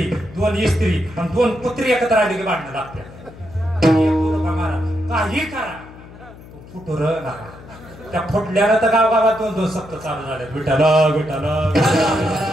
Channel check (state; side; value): noise; left; hum, 19 dB below the sound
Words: 2 इस्त्री आणि 2 पुत्री एकत्र आली की भांडणं लागते. काही करा फुटूर नका. त्या फुटल्यानं तर गावागावात 2-2 सप्त चालू झाले. विठाला विठाला.